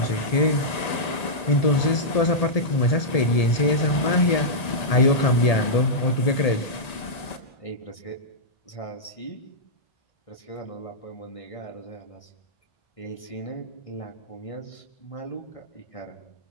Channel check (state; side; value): late; right; 1.7 ms